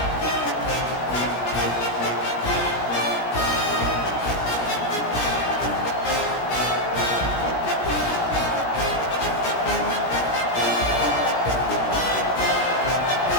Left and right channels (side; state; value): right; late; 17 ms